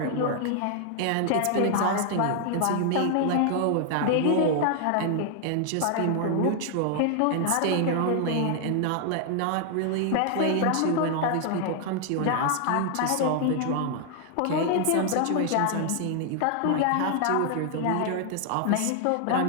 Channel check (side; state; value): both; different; correlation 0.00